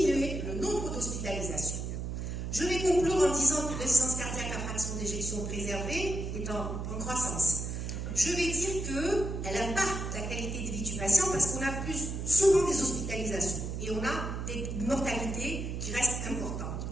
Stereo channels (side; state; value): right; noise; hum, 4 dB below the sound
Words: le nombre d'hospitalisations. Je vais conclure en disant que l'insuffisance cardiaque à fraction d'éjection préservée est en croissance. Je vais dire qu'elle impacte la qualité de vie du patient parce qu'on a plus souvent des hospitalisations et on a des mortalités qui restent importantes.